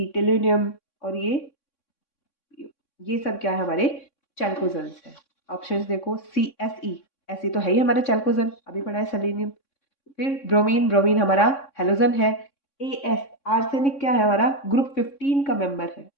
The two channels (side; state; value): right; late; 3.6 ms